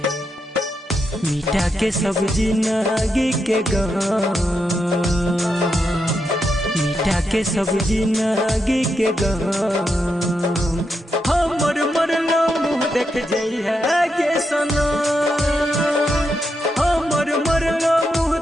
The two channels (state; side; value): normal; both; correlation 0.84